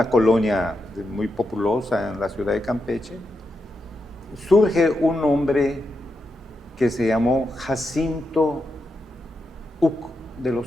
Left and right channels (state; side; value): normal; both; correlation 0.86